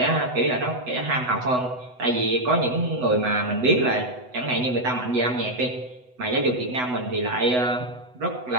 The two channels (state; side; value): late; left; 8.0 ms